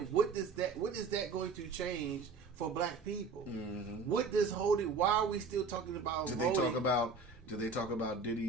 what is that going to change for black people? What does holding? Why are we still talking about voting? Did they talk about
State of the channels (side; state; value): left; quieter; 4.3 dB